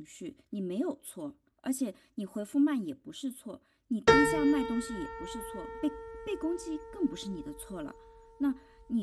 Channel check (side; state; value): both; identical; correlation 1.00